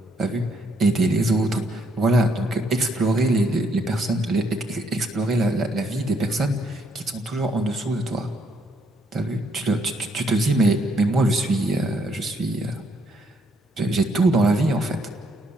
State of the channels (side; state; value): both; normal; correlation 0.72